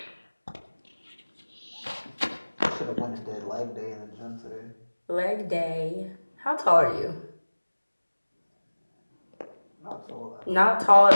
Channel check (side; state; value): both; inverted; correlation -1.00